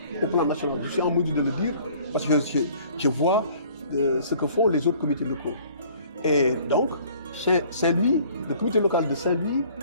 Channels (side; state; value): both; inverted; correlation -0.54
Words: au plan national. Je suis en mesure de le dire parce que je vois ce que font les autres comités locaux. Et donc, Saint-Louis, le comité local de Saint-Louis